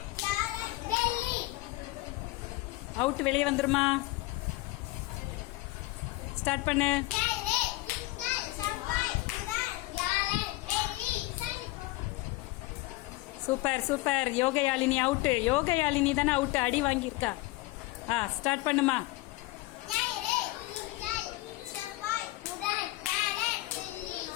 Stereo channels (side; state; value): right; quieter; 20.2 dB